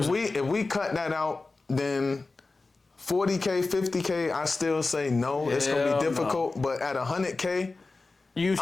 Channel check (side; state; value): right; quieter; 3.6 dB